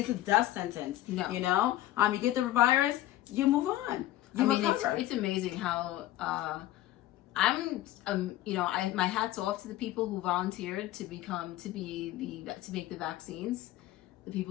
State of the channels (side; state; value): right; quieter; 14.9 dB